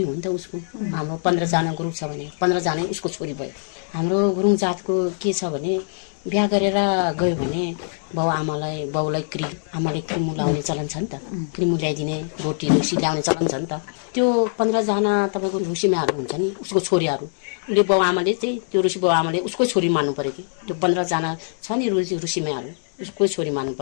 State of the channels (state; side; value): silent; right; digital silence